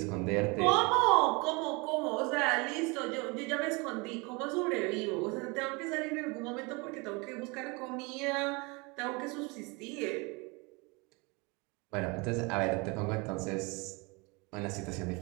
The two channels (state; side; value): quieter; left; 28.0 dB